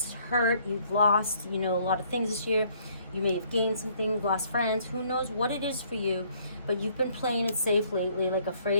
hurt, you've lost, a lot of things this year. You may have gained some things, lost friends, who knows what it is for you, but you've been playing it safe lately, like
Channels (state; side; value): inverted; both; correlation -0.63